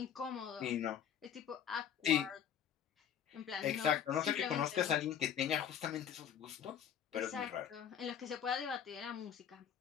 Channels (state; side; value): quieter; right; 8.8 dB